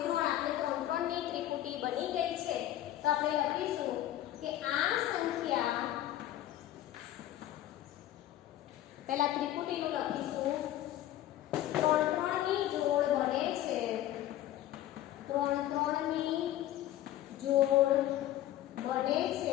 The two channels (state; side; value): quieter; right; 13.3 dB